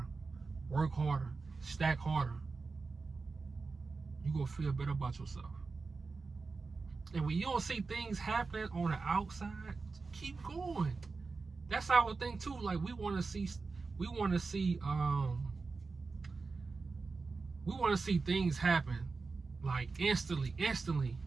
work harder, stack harder. You gonna feel better about yourself. And when you don't see things happening on the outside, keep going. That's our thing too. Like we want to see things happen like instantly.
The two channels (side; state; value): left; quieter; 4.2 dB